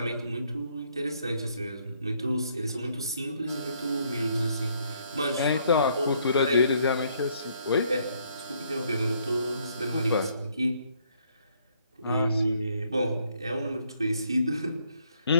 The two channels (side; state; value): both; inverted; correlation -0.68